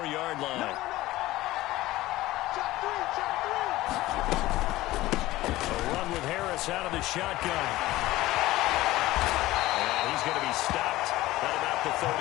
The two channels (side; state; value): right; quieter; 17.2 dB